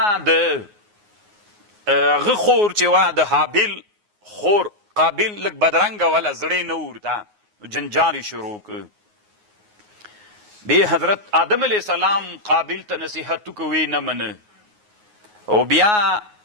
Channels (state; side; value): late; left; 9.5 ms